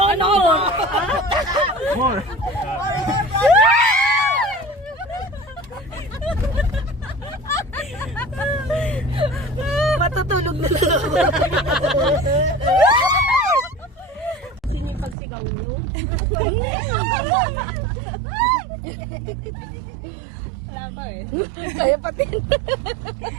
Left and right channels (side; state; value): left; drops out; at 15.2 s